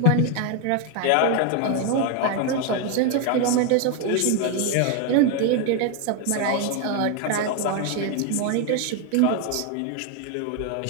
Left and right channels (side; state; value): both; different; correlation 0.01